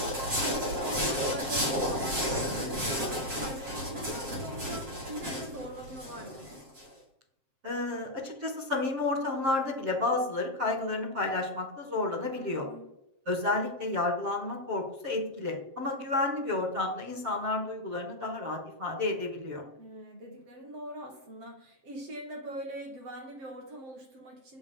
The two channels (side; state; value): left; late; 7.5 ms